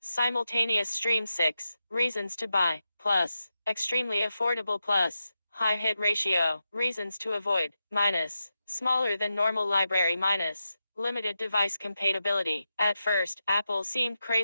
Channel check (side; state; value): both; inverted; correlation -0.89